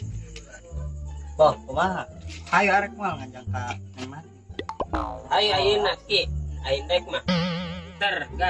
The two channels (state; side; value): identical; both; correlation 1.00